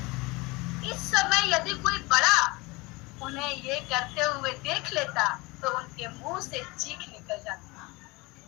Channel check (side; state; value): right; quieter; 24.2 dB